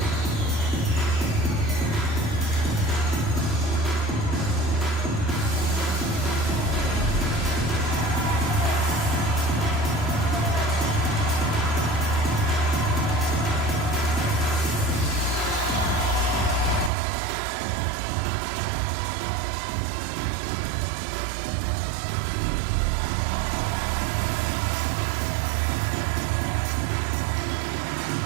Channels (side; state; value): left; drops out; at 16.9 s